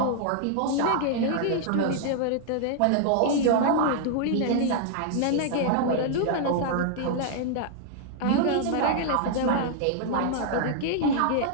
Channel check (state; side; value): different; both; correlation -0.01